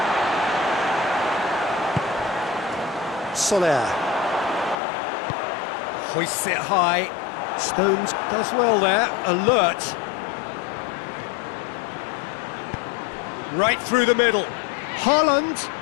Soler. Hoists it high. Stones does well there. Alert. Right through the middle. Haaland.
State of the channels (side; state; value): right; drops out; at 4.8 s